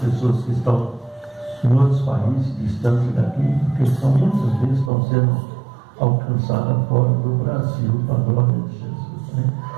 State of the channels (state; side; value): drops out; left; at 4.9 s